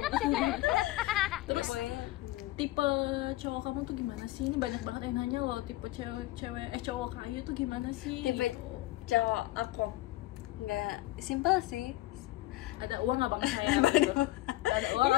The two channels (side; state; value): right; quieter; 17.4 dB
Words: Terus tipe cowok kamu tuh gimana sih? Ini banyak banget yang nanya loh, tipe cowok Ayu tuh gimana sih? Tipe cowok aku nggak simpel sih. Ada uang nggak bang sayang? Gitu. Ada uang